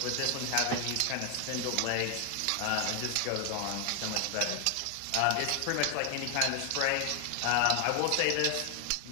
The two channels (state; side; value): different; both; correlation 0.00